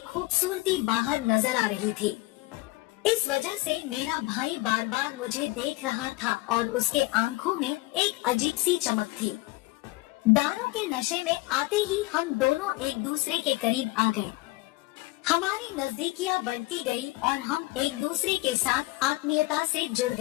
खूबसूरती बाहर नजर आ रही थी। इस वजह से मेरा भाई बार बार मुझे देख रहा था और उसके आंखों में एक अजीब सी चमक थी। दारू के नशे में आते ही हम दोनों एक दूसरे के करीब आ गए। हमारी नजदीकियां बढ़ती गई और हम एक दूसरे के साथ आत्मीयता से जुड़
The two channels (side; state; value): right; quieter; 21.0 dB